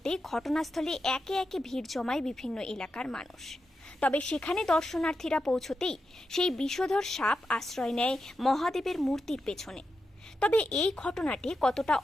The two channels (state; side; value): normal; both; correlation 0.88